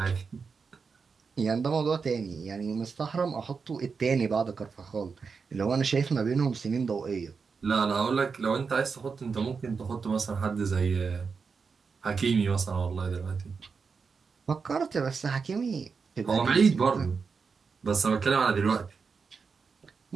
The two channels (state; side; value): quieter; left; 5.3 dB